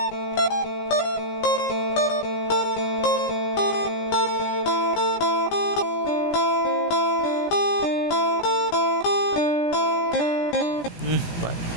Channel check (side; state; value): right; late; 17 ms